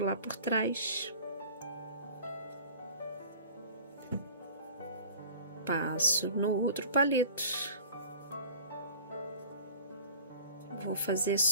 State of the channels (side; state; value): both; inverted; correlation -0.43